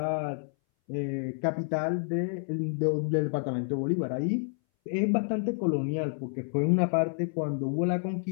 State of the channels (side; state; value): right; silent; 58 dB below the other